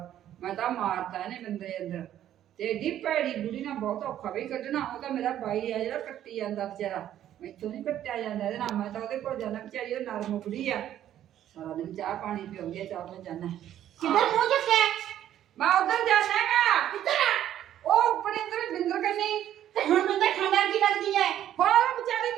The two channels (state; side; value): quieter; left; 11.5 dB